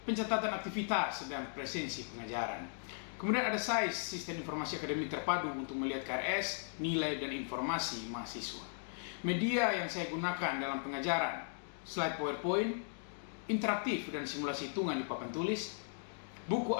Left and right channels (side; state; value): right; silent; digital silence